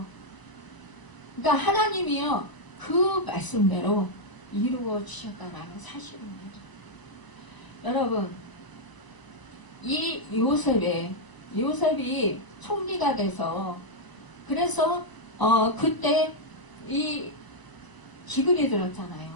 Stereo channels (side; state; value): right; late; 1.0 ms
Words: 그러니까 하나님이요 그 말씀대로 이루어 주셨다는 사실입니다. 여러분, 이 요셉이 총리가 돼서, 그래서 그때 이 기근이 들었잖아요.